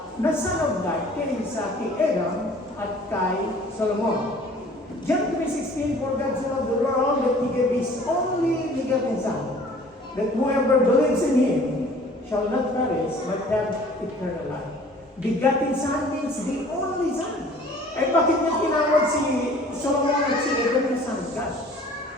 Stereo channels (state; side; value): normal; both; correlation 0.50